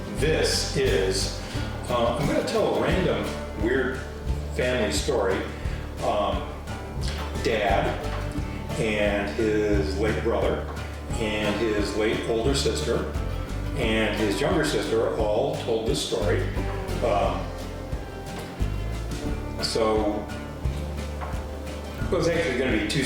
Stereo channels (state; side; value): identical; both; correlation 1.00